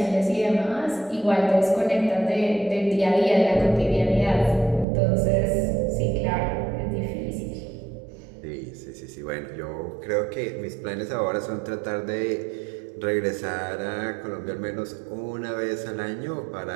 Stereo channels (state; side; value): drops out; left; at 4.9 s